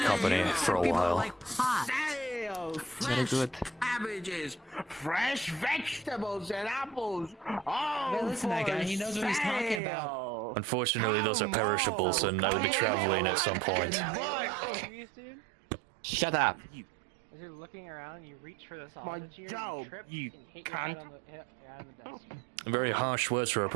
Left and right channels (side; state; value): left; drops out; at 9.8 s